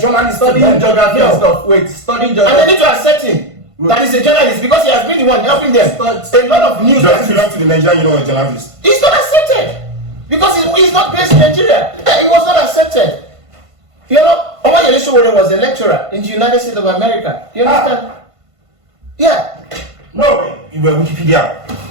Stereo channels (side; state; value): left; late; 1.5 ms